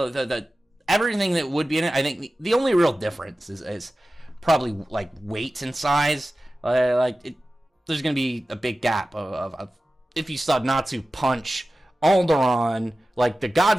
everything that would be in it. I think the only real difference is probably like weight and size. There's going to be a big gap of if you saw Natsu punch Alderaan, like the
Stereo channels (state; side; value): normal; both; correlation 0.95